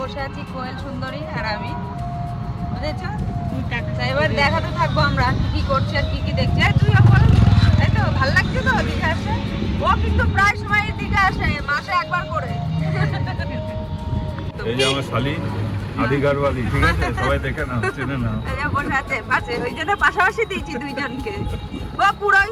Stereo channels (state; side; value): identical; both; correlation 1.00